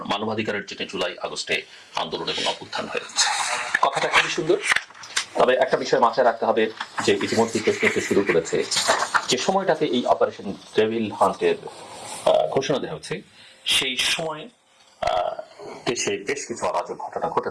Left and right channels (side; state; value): both; identical; correlation 1.00